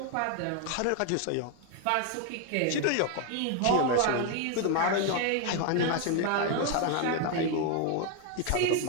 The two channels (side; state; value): both; different; correlation 0.01